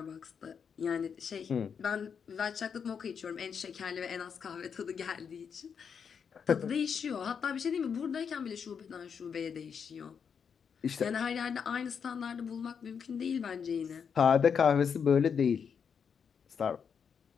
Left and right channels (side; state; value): right; quieter; 6.8 dB